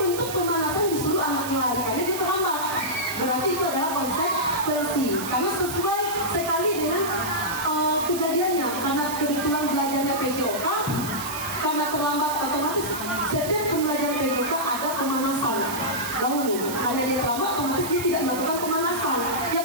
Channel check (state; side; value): noise; right; hiss, 8 dB below the sound